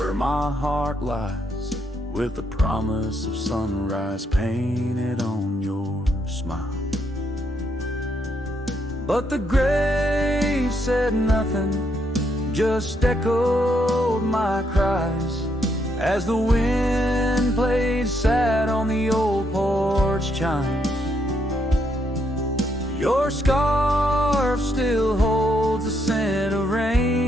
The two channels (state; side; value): normal; both; correlation 0.76